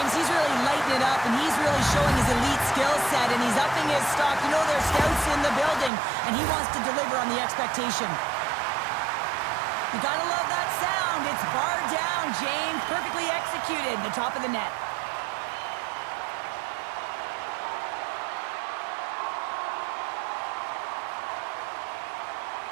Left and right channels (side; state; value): left; drops out; at 5.9 s